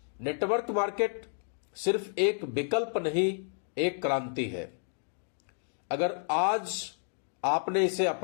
नेटवर्क मार्केट सिर्फ एक विकल्प नहीं, एक क्रांति है। अगर आज आपने इसे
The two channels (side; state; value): right; silent; digital silence